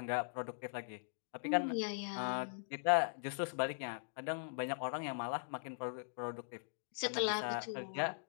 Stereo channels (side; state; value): right; silent; digital silence